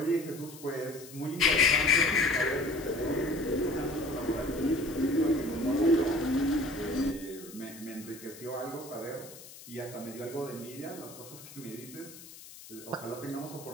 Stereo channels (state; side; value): noise; left; hiss, 17 dB below the sound